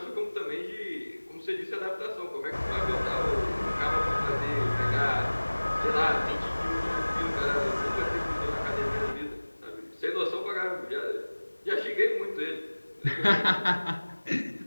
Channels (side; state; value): both; inverted; correlation -1.00